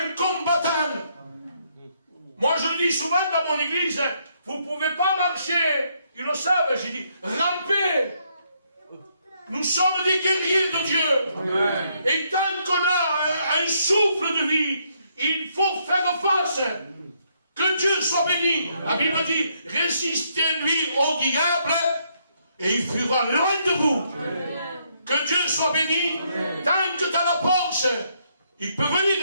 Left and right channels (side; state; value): both; inverted; correlation -0.73